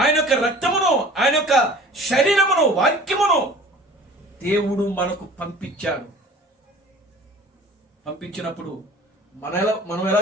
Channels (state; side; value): normal; both; correlation 0.45